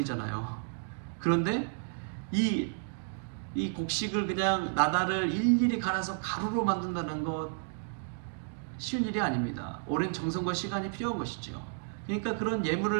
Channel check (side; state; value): left; silent; digital silence